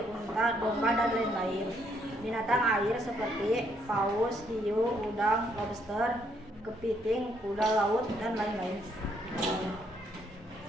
unta, domba, dan lain-lain. Binatang air seperti paus, hiu, udang, lobster, kepiting, kuda laut, dan lain-lain.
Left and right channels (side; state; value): both; normal; correlation 0.71